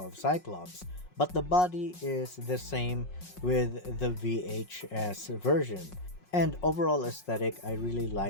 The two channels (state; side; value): late; right; 5.5 ms